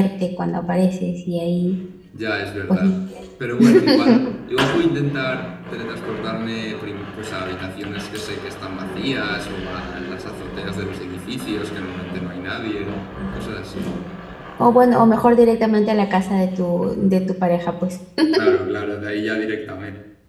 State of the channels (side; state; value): both; identical; correlation 1.00